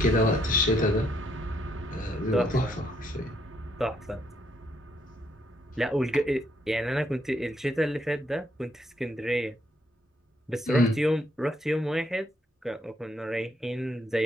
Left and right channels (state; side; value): normal; both; correlation 0.72